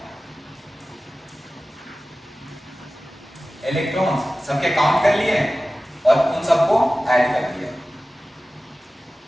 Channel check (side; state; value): both; normal; correlation 0.96